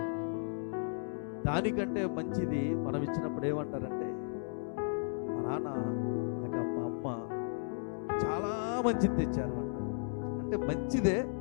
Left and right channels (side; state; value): right; silent; digital silence